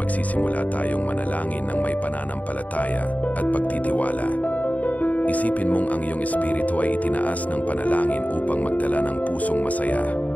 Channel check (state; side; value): late; right; 0.072 ms